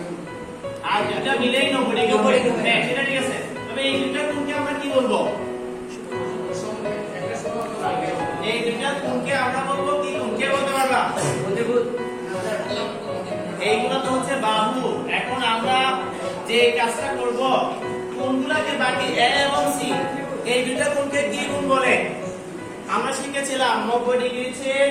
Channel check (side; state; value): both; identical; correlation 1.00